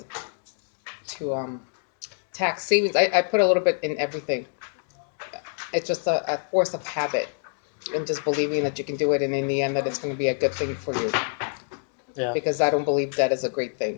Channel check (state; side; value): silent; right; 61 dB below the other